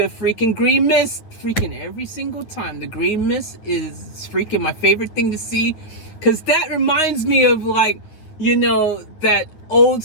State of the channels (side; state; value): right; late; 9.6 ms